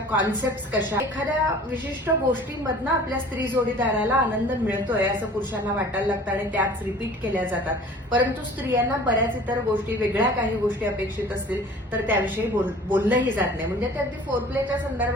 कशा, एखाद्या विशिष्ट गोष्टींमधनं आपल्या स्त्री जोडीदाराला आनंद मिळतोय असं पुरुषांना वाटायला लागतं आणि त्याच रिपीट केल्या जातात. परंतु स्त्रियांना बऱ्याच इतर गोष्टी, वेगळ्या काही गोष्टी अपेक्षित असतील तर त्याविषयी बोललंही जात नाही. म्हणजे ते अगदी फोरप्लेच्या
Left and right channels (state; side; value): normal; both; correlation 0.46